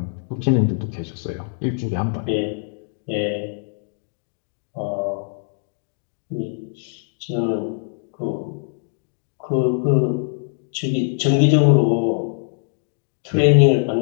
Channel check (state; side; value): silent; right; digital silence